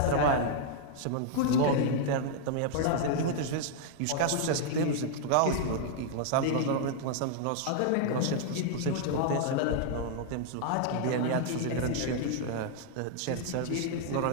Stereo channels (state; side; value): different; both; correlation -0.01